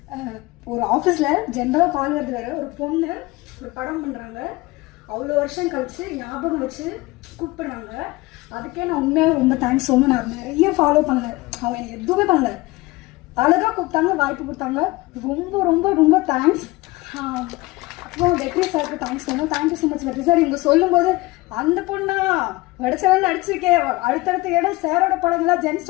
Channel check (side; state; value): right; quieter; 21.2 dB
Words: ஒரு ஆஃபீஸில் ஜென்ரலாக கால் வருது வேறு, ஒரு பொண்ணு ஒரு படம் பண்ணுறாங்க, அவ்வளோ வருஷம் கழிச்சு ஞாபகம் வச்சு கூப்பிடுறாங்க. அதுக்கே நான் உண்மையாக ரொம்ப தேங்க்ஸ் சொல்லணும். நான் நிறைய ஃபாலோ பண்ணல, அவங்க எனக்கு எதுவுமே பண்ணல, அழகாக கூப்பிட்டாங்க, வாய்ப்பு கொடுத்தாங்க. ரொம்ப ரொம்ப ரொம்ப தேங்க்ஸ். அப்புறம் வெற்றி சாருக்கு தேங்க்ஸ் சொல்லணும். தேங்க்யூ ஸோ மச் வெற்றி சார். இங்கே சொல்லும்போது அந்த பொண்ணா வடிச்சவன் நடிச்சிருக்கேன், அடுத்தடுத்த இடம் சாரோட படங்கள்லாம் ஜென்ஸ்